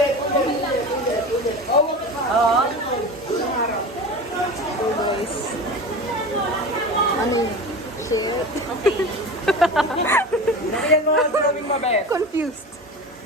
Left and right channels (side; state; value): both; normal; correlation 0.31